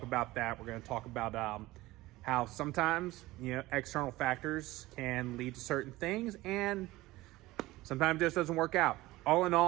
about that. We're going to talk about how sometimes, external factors can lead to certain things, and sometimes it just doesn't work out. All in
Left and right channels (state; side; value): quieter; left; 18.5 dB